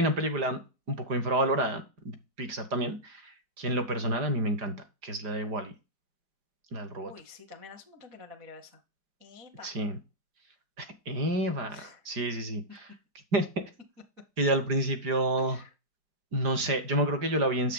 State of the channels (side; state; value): left; late; 5.0 ms